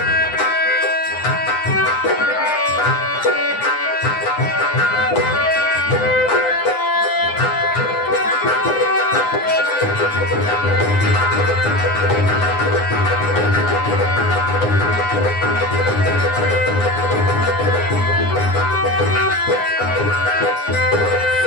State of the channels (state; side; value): late; right; 9.8 ms